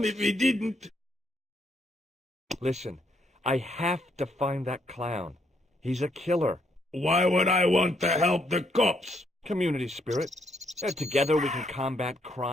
if he didn't. Listen, I have to find that clown. He's a killer. Why would I want to help the cops? Community spirit. Together we can combat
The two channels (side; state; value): both; normal; correlation 0.73